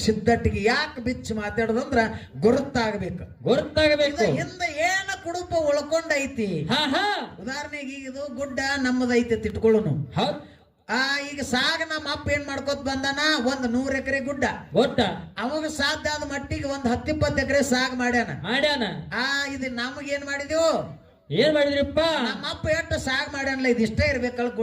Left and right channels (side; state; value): both; identical; correlation 1.00